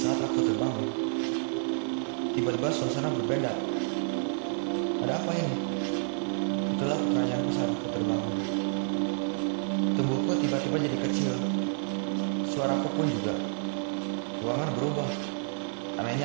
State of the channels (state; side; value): silent; left; 58 dB below the other